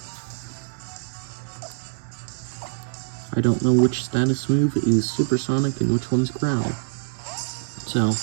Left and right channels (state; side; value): silent; left; digital silence